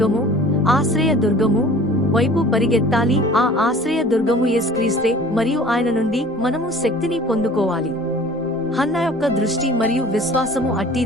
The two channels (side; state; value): both; normal; correlation 0.47